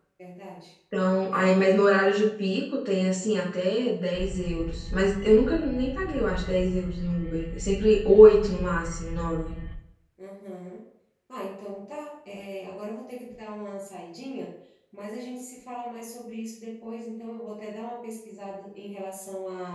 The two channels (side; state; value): both; identical; correlation 1.00